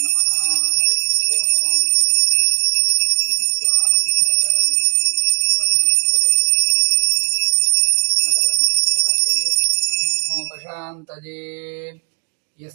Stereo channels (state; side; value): quieter; left; 37.0 dB